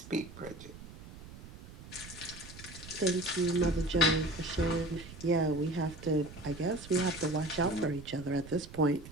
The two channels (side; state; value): right; noise; rumble, 16 dB below the sound